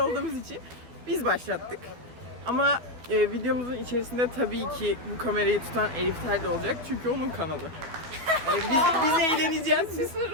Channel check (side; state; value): left; late; 12 ms